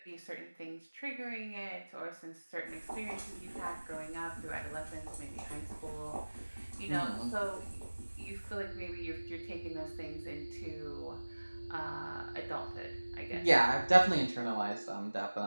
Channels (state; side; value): inverted; both; correlation -1.00